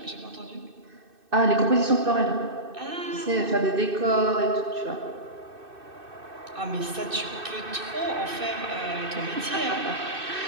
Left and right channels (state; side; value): late; left; 2.6 ms